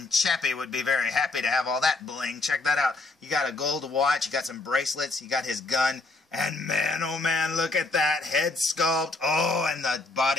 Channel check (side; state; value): right; quieter; 3.3 dB